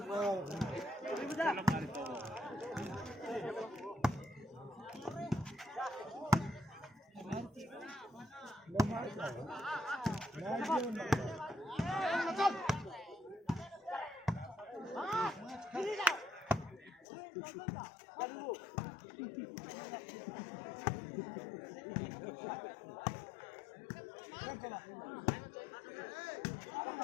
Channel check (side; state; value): right; drops out; at 17.1 s